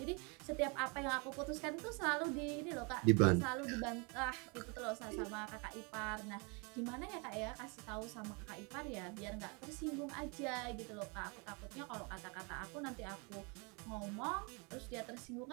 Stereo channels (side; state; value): left; quieter; 31.9 dB